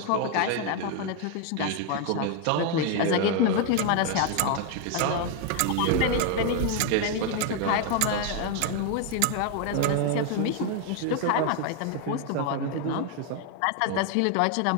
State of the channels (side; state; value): both; different; correlation 0.01